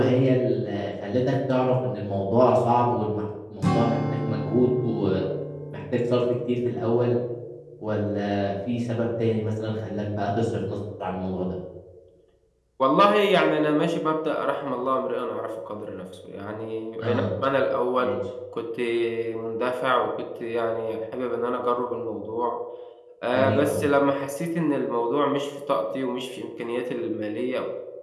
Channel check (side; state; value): both; identical; correlation 1.00